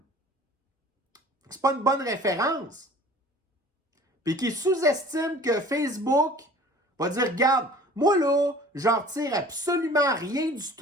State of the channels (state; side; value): normal; both; correlation 0.46